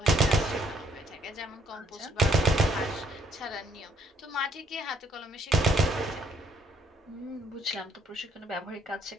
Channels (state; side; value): normal; both; correlation 0.67